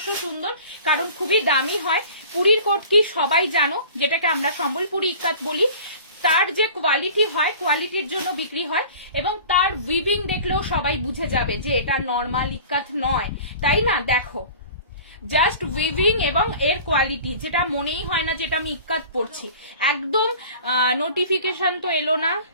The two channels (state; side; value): inverted; both; correlation -0.42